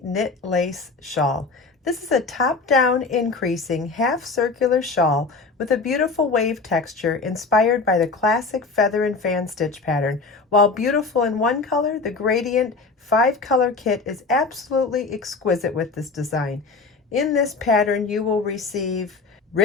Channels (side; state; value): right; quieter; 4.0 dB